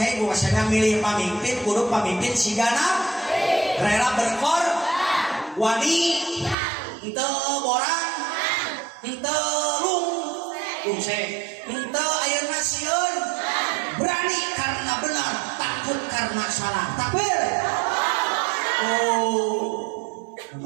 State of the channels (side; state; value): left; drops out; at 6.6 s